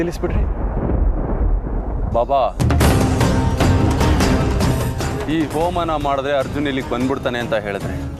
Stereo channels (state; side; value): identical; both; correlation 1.00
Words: ಬಾಬಾ, ಈ ಹೋಮನ ಮಾಡಿದ್ರೆ ಅರ್ಜುನ್ ಇಲ್ಲಿಗೆ ಬಂದ್ಬಿಡ್ತಾನೆ ಅಂತ ಹೇಳಿದ್ರೆ